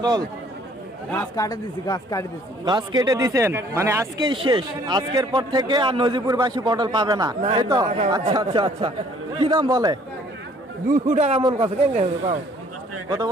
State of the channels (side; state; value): both; normal; correlation 0.58